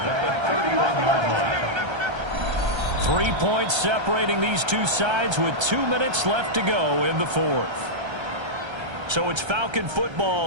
at the 31-yard line. 3 points separating these two sides with 2 minutes left to go in the 4th. So it's Falcon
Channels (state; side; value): late; left; 1.3 ms